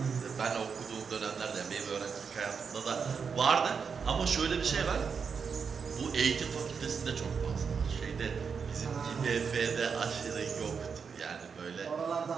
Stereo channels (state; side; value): quieter; left; 6.0 dB